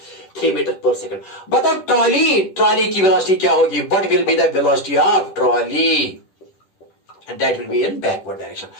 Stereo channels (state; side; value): late; right; 10 ms